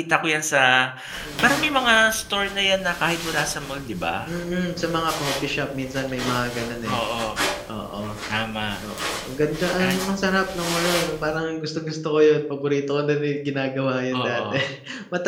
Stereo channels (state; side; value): identical; both; correlation 1.00